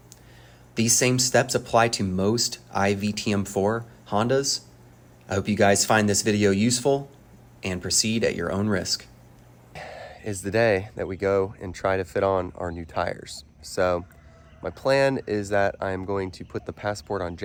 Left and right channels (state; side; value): identical; both; correlation 1.00